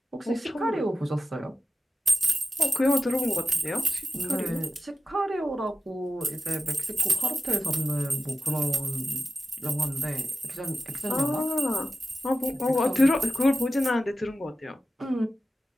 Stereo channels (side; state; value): both; normal; correlation 0.93